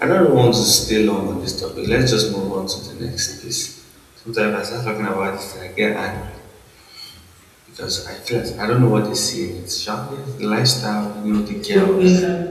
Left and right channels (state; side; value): identical; both; correlation 1.00